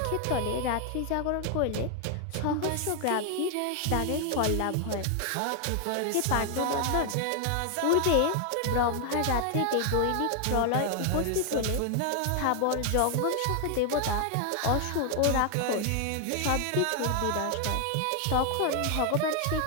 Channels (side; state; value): both; different; correlation 0.00